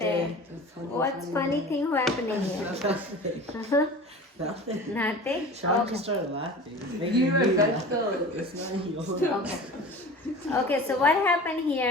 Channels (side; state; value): both; normal; correlation 0.37